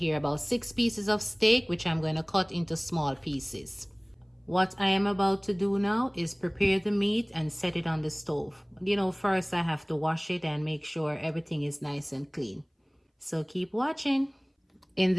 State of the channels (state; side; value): identical; both; correlation 1.00